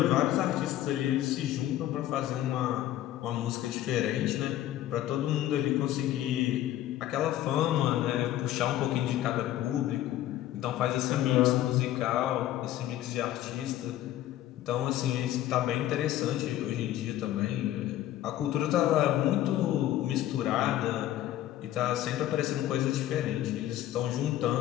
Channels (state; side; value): quieter; right; 13.2 dB